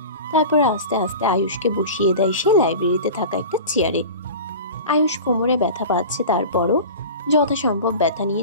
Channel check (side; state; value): both; inverted; correlation -0.34